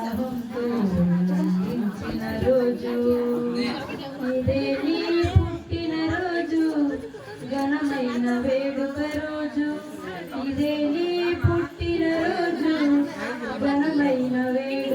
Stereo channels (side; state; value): both; identical; correlation 1.00